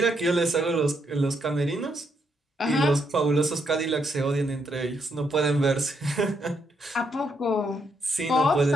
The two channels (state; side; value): normal; both; correlation 0.77